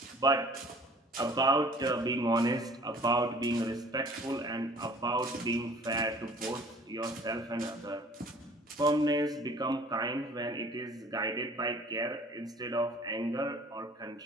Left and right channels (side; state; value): both; normal; correlation 0.51